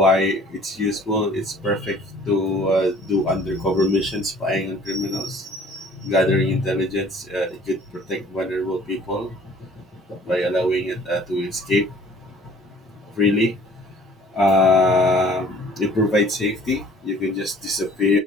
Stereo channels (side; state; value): both; normal; correlation 0.53